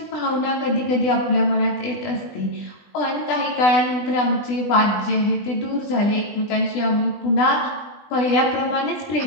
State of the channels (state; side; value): late; right; 20 ms